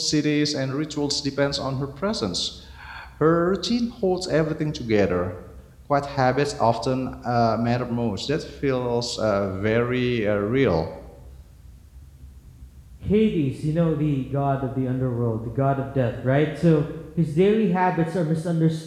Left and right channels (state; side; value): identical; both; correlation 1.00